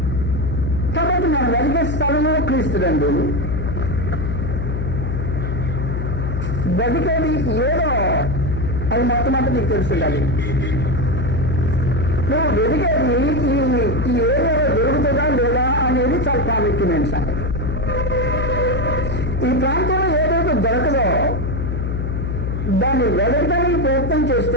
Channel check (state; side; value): noise; left; hum, 2 dB below the sound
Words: కాబట్టి మనం వెలిగే స్థలము క్రీస్తునందు. వెతికేది ఏదో అది మొట్టమొదటి నీకు తెలుసుండాలి. నువ్వు వెతికేది ఈ ఏరియాలో దొరుకుతుందా లేదా అనేది చాలా ప్రాముఖ్యమైన సంగతి. ఈ ప్రాంతంలో ఏదైతే దొరకదో దాన్ని వెతకడానికి ప్రయత్నం